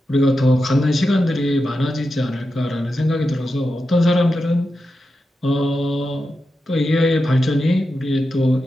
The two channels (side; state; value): both; normal; correlation 0.89